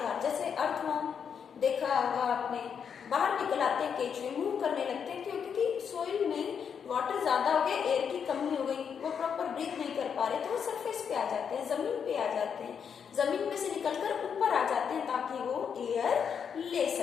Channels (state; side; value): quieter; right; 7.2 dB